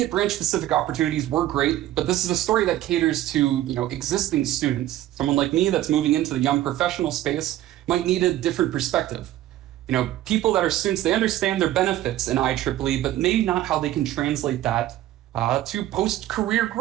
branch-specific opportunities were great, but this is a story that caters to, existing students. Someone like me that's moving into the young professional space might need a different perspective. People that are students, they understand their benefits in IEEE, but maybe not how they can translate that to post-career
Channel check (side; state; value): left; quieter; 13.9 dB